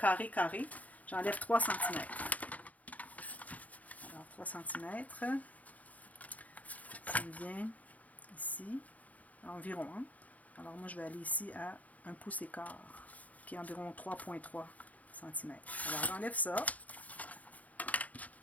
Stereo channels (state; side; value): late; right; 0.074 ms